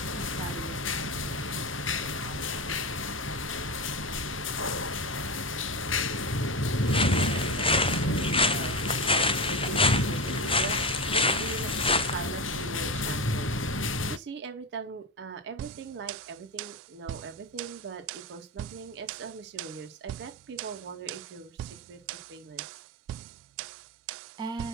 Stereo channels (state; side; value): normal; both; correlation 0.18